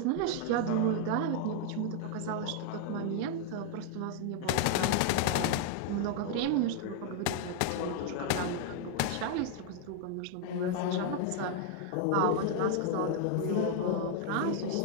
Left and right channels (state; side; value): different; both; correlation 0.00